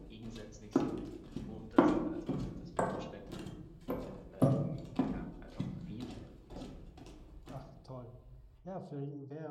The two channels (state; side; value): identical; both; correlation 1.00